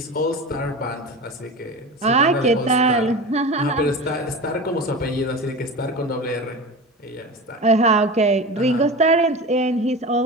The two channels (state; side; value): normal; both; correlation 0.30